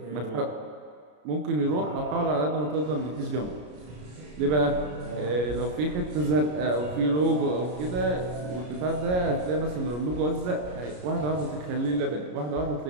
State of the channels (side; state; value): left; late; 33 ms